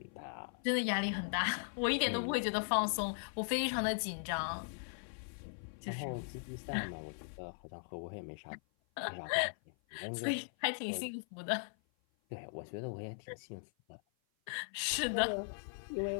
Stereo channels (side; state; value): right; silent; 52 dB below the other